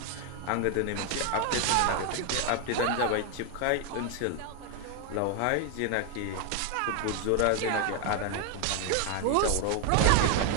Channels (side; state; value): both; different; correlation 0.01